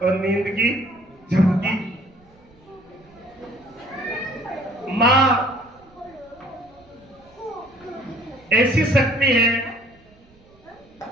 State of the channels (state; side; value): noise; right; rumble, 29 dB below the sound